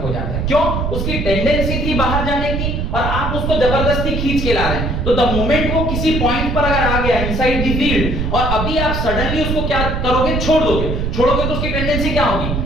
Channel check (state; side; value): noise; right; rumble, 1 dB below the sound